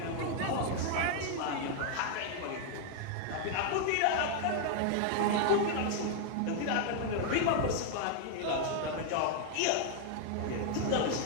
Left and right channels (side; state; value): both; different; correlation 0.00